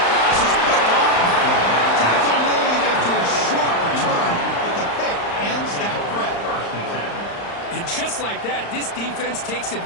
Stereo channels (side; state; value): right; late; 35 ms